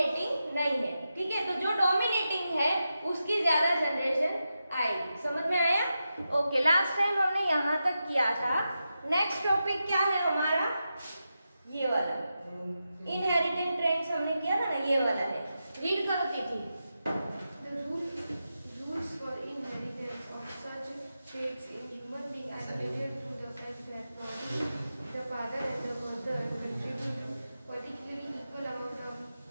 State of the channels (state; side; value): inverted; both; correlation -0.89